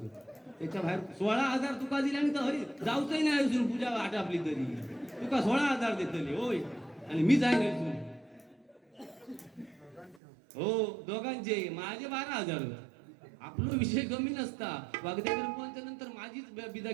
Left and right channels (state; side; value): drops out; left; at 10.2 s